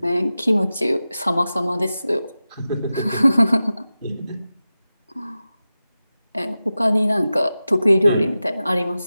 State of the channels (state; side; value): inverted; both; correlation -0.94